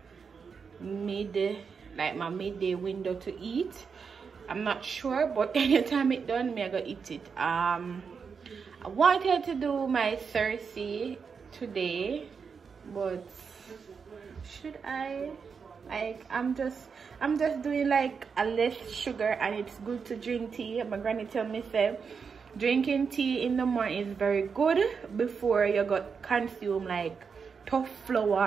midday, like my midday window to eat. I'm not sure, but anytime it done, me I go eat it. I wanted to do my Thursday today, but should I? Like, I'm just doing like a less sugar, and it's good to drink tea. My granny tell me say drinking tea in the morning is very good before you got consume like tough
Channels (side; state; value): left; quieter; 5.8 dB